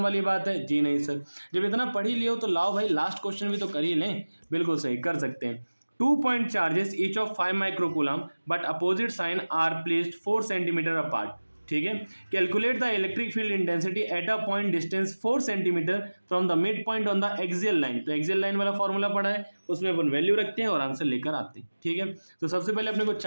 वाली बात है? जी नहीं सर। जब इतना पढ़ ही लियो तो लाओ भाई लास्ट क्वेश्चन भी तो कर ही लें। बिल्कुल सही, कर सकते हैं। 2 point charges each of 5 microcoulomb but opposite sign are placed 4 centimeter apart। ठीक है, calculate the electric field intensity at a point distance 4 centimetre from the mid point on the axial line. तो एक्सियल लाइन वाला formula पढ़ा है, उसमें अपन value रखते हैं और आंसर लेकर आते हैं। ठीक है, तो सबसे पहले अपने को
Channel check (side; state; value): both; inverted; correlation -1.00